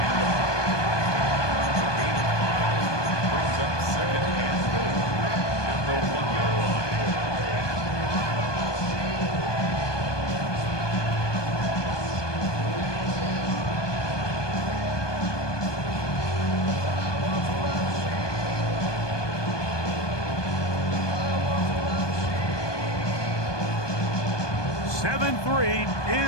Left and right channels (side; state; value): right; late; 1.2 ms